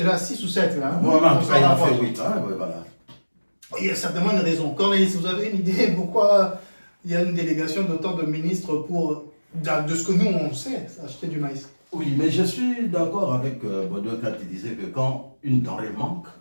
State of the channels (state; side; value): inverted; both; correlation -1.00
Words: à 6 ou 7 là. Hein? Voilà, en On tout s'en cas, il en rapproche. fait 8. Hein, ouais, voilà. Il y a certainement une raison. Cornelis, vous avez une idée pourquoi il y a une délégation d'autant de ministres pour, de ce que nous on sait, acheter du maïs? Oui, mais je suis d'accord avec Baudouin quand il disait que quand une denrée manque,